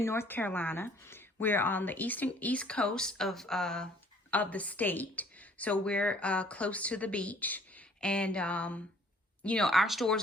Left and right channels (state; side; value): normal; both; correlation 0.57